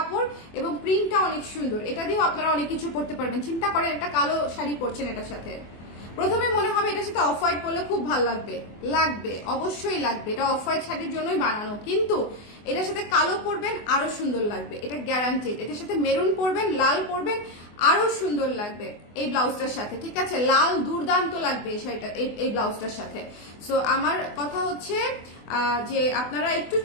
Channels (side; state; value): right; late; 24 ms